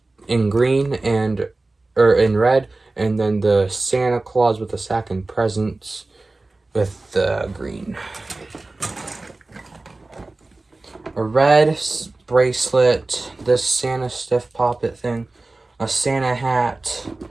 green or in red, and then the Santa Claus with the sack and presents with the green. A red bracelet, this Santa stiff poppet thing, a Santa hat,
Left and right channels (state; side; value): quieter; left; 3.1 dB